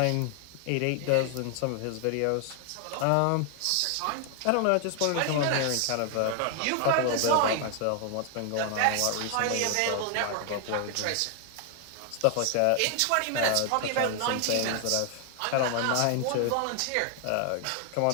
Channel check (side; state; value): both; different; correlation 0.00